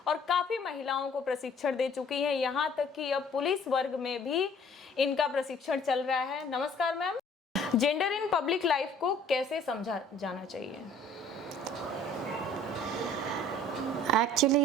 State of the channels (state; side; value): normal; both; correlation 0.55